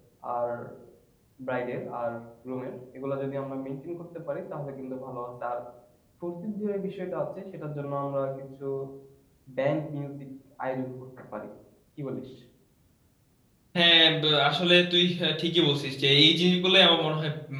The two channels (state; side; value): identical; both; correlation 1.00